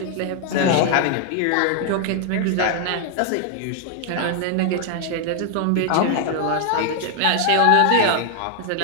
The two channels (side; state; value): both; different; correlation 0.00